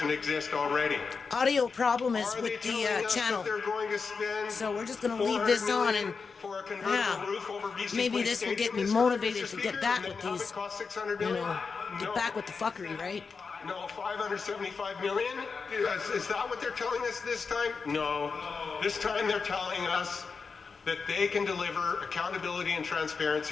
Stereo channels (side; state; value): right; quieter; 5.0 dB